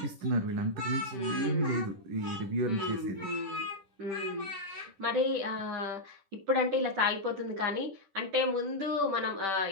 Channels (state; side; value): late; left; 10 ms